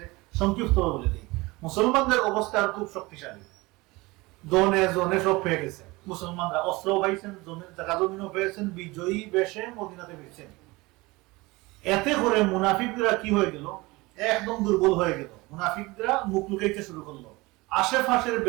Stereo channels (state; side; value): quieter; left; 22.5 dB